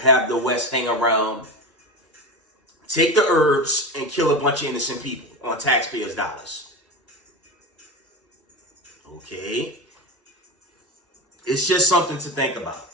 the West hang around, take the herbs, and kill a bunch of innocent people on taxpayers' dollars? Okay. It's just something to think about.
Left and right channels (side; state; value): both; normal; correlation 0.24